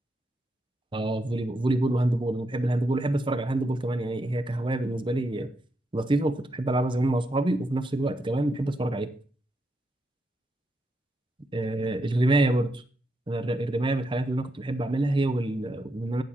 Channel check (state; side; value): normal; both; correlation 0.82